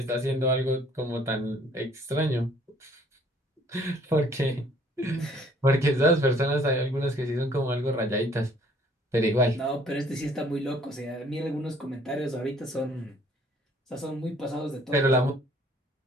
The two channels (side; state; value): both; normal; correlation 0.59